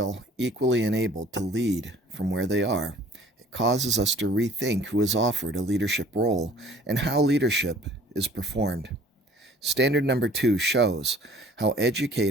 equally enabled to lead from where they are, it causes us to rethink who is offered a leadership role and how leadership is performed. Standard number 2 shows how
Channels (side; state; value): both; normal; correlation 0.52